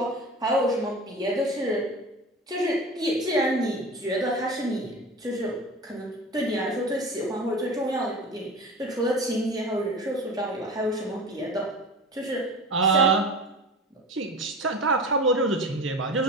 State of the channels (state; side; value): normal; both; correlation 0.33